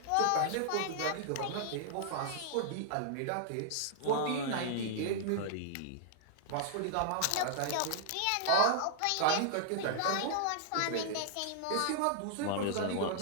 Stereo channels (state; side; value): different; both; correlation -0.01